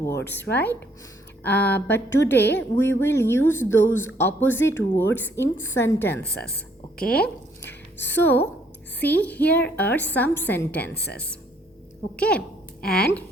right? But today we will use those opposite words in sentences. Okay, so see, here are some sentences. Okay, and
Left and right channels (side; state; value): both; normal; correlation 0.66